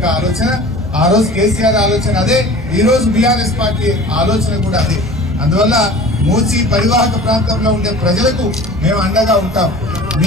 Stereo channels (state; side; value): normal; both; correlation 0.41